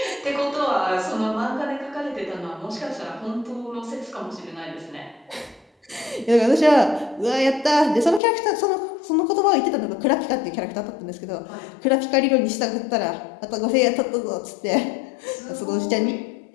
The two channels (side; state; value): right; drops out; at 8.2 s